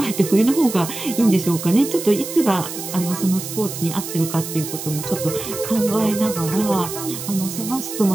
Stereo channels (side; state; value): right; noise; hiss, 8 dB below the sound